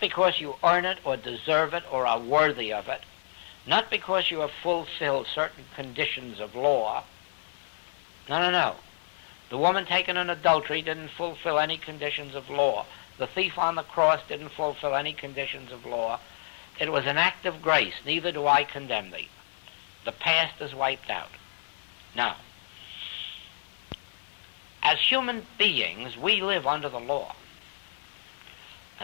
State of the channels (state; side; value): silent; right; digital silence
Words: you earn it or deserve it or are worthy of it. Not because you have fulfilled certain conditions of law. No. The woman taken in adultery didn't fulfill any conditions of law. The thief on the cross didn't fulfill any conditions of law. It was an act of grace. Neither do I condemn thee. The past is wiped out. Now, as human beings, we live under the law.